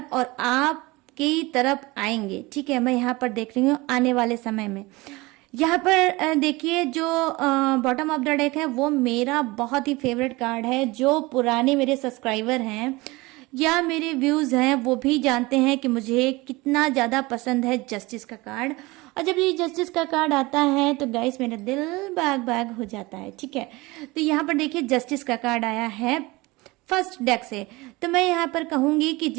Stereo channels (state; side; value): quieter; left; 22.4 dB